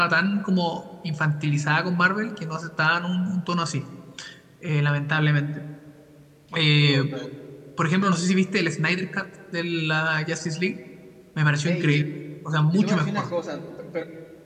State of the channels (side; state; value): both; identical; correlation 1.00